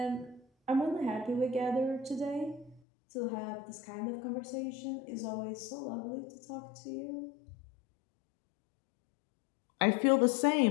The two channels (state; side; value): drops out; right; at 2.8 s